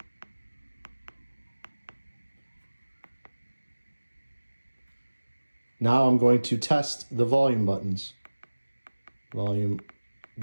Now I'm going to test the volume buttons. Volume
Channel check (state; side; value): inverted; both; correlation -1.00